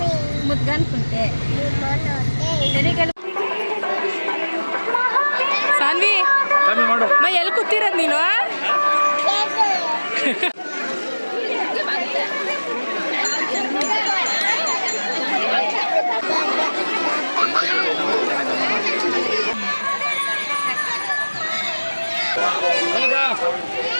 ಮುದ್ಗನ್ ಕುಂಟೆ. ಸಾನ್ವಿ ಎಲ್ಲಿ ಕೂತಿರೋದು ನೀನು?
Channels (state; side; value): inverted; both; correlation -1.00